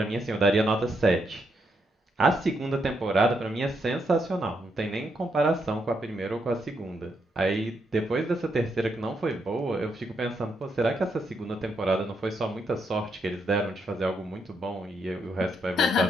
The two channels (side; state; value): both; normal; correlation 0.78